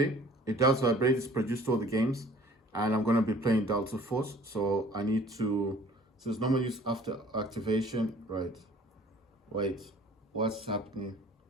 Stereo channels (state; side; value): normal; both; correlation 0.51